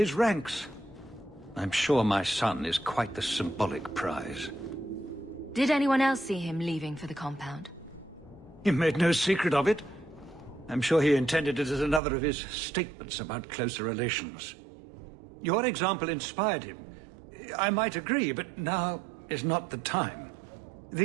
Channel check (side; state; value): left; drops out; at 12.0 s